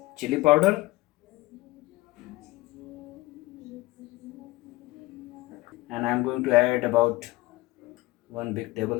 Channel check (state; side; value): quieter; right; 19.9 dB